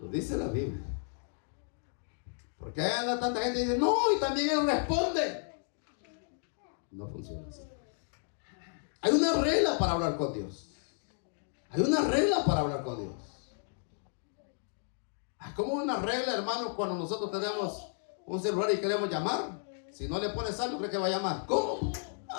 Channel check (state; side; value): silent; right; 56 dB below the other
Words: dice la Biblia. Porque hay tanta gente que dice, no, y también Él responde. No funciona así. Hay una regla para hablar con Dios. Hay una regla para hablar con Dios. Hay como una regla, hermanos, cuando nosotros tenemos un celular y queremos llamar. Si no le pones algo, ¿cree que va a llamar? ¿Cómo?